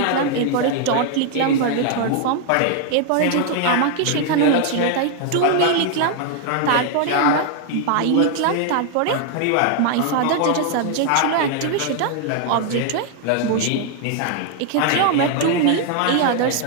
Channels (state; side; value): different; both; correlation 0.00